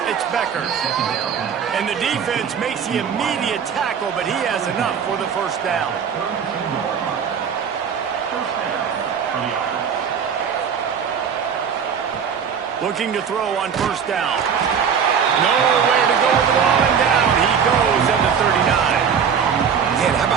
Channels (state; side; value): quieter; left; 7.2 dB